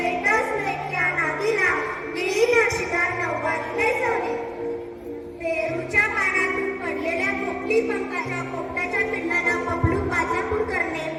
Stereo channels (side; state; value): both; identical; correlation 1.00